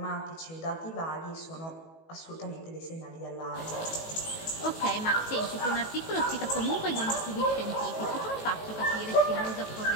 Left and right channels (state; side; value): late; right; 18 ms